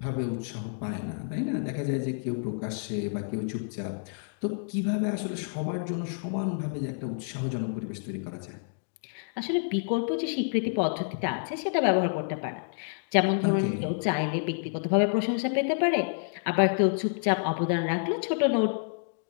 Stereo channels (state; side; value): silent; right; digital silence